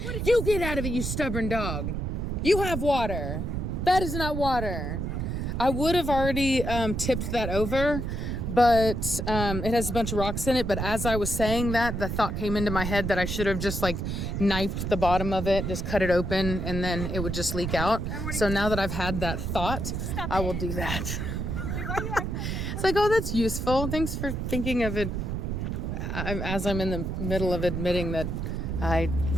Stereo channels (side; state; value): right; noise; rumble, 2 dB below the sound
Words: You get out of it, you stubborn dog. You have water. That is not water. I would have already tipped that over, but it has a bunch of rocks in it. But as I was saying that, the thought came into my head that I should have just like knifed the bottom of it, just cut it open, and then it would just leak out. So now that I've had that thought, I will do that. Dude, why are you acting like that? It's like, oh, that's useful. Thanks for thinking of it as I'm in the middle of admitting that I